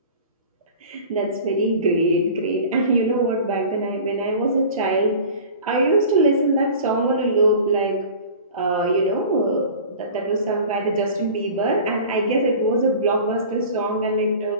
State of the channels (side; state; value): both; inverted; correlation -0.40